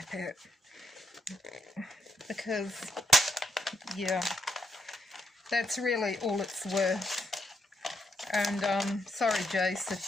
it. Because, yeah, that's really all it's worth. And sorry, Jace, if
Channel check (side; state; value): both; normal; correlation 0.77